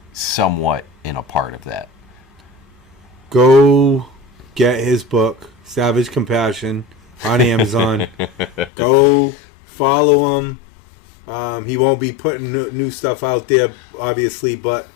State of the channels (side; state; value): right; drops out; at 8.7 s